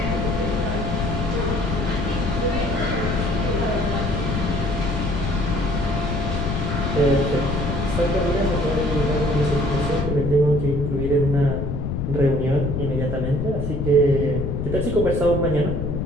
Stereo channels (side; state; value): left; noise; rumble, 2 dB below the sound